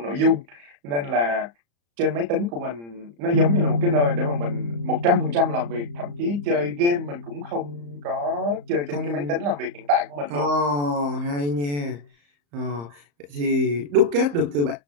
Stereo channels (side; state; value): left; late; 35 ms